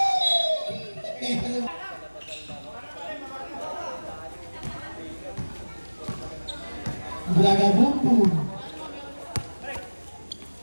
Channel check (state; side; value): inverted; both; correlation -1.00